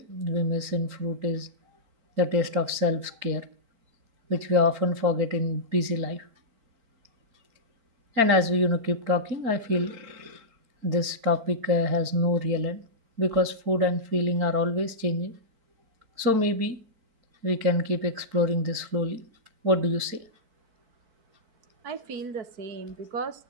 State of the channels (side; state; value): left; late; 4.4 ms